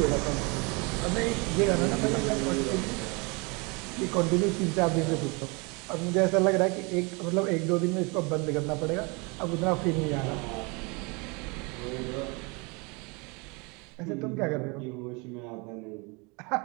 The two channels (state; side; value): quieter; left; 29.6 dB